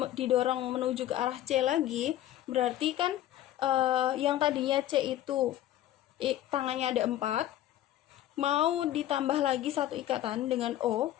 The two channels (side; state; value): right; quieter; 13.1 dB